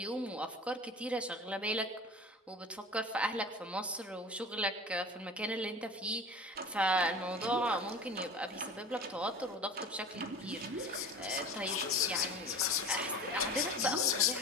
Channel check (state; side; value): normal; both; correlation 0.37